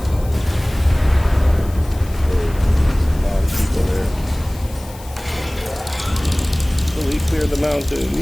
Clear the mountain.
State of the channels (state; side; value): noise; left; hiss, 20 dB below the sound